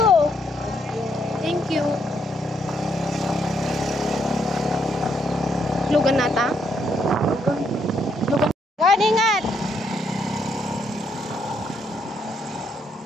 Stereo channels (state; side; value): normal; both; correlation 0.74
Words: Thank you. Lugan nata.